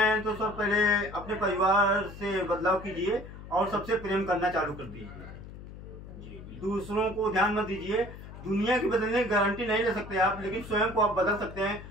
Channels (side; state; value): left; noise; hum, 14 dB below the sound